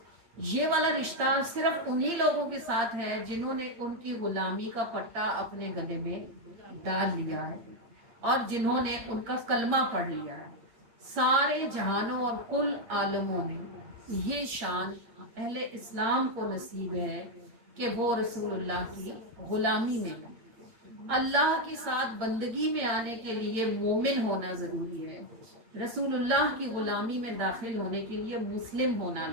یہ والا رشتہ صرف انہی لوگوں کے ساتھ ہے جنہوں نے ان کی غلامی کا پٹا اپنے گلے میں ڈال لیا ہے اور جنہوں نے ان کا کلمہ پڑھ لیا ہے۔ سارے جہانوں اور کل عالموں میں یہ شان اہل اسلام کو نصیب ہے کہ وہ رسول اللہ کی غلامی میں ہے۔ اللہ کے ساتھ بندگی میں آنے کے لیے مومن ہونا ضروری ہے، رسول اللہ کی غلامی میں داخل ہونے کے لیے مسلم ہونا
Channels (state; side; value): late; left; 8.6 ms